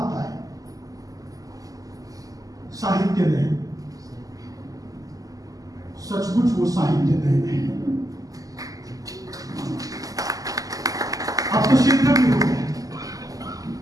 है, साहित्य नयन। सचमुच वो साहित्य नयन है। अब तो सिद्ध भी हो गया।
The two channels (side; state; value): left; late; 0.17 ms